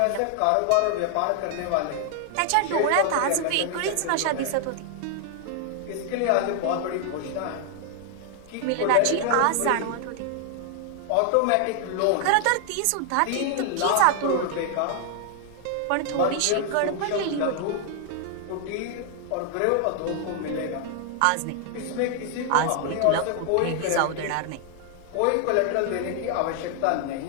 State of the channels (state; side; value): different; both; correlation 0.00